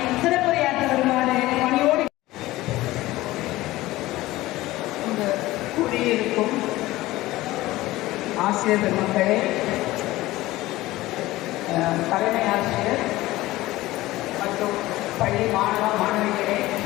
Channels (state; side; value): quieter; right; 17.7 dB